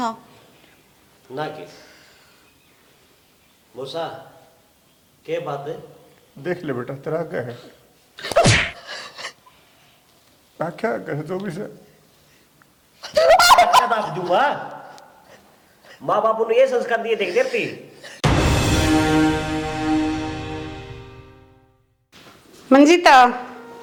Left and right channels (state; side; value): identical; both; correlation 1.00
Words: ना के मूसा, क्या बात है? देख ले बेटा तेरा क्या है, क्या कहे जो भी से क्या दाब दूंगा? माँ बापू ने ये संस्कार दिए देख देती। मंजीता,